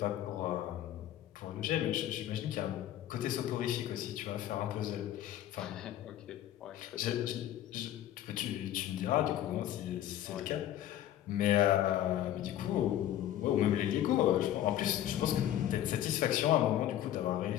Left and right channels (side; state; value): right; quieter; 12.2 dB